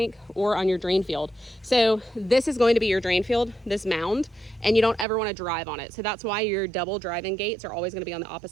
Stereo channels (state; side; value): drops out; left; at 5.1 s